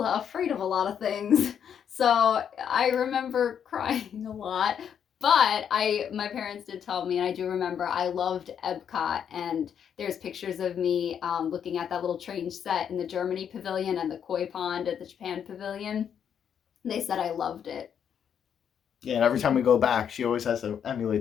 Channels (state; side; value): quieter; right; 8.3 dB